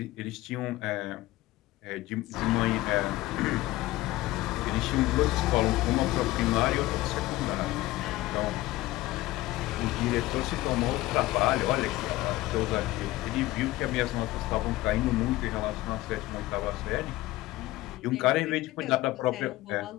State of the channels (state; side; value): quieter; right; 17.7 dB